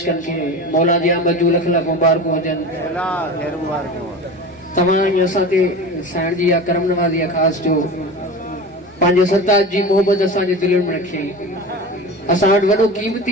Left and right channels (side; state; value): both; normal; correlation 0.31